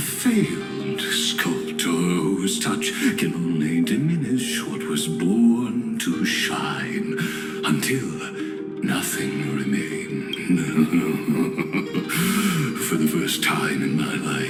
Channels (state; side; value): identical; both; correlation 1.00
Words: sculptor whose touch can only diminish what was born to shine until nothing remained. For the first time in my